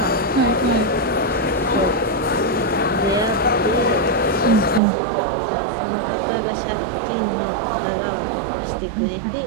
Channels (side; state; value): left; drops out; at 4.8 s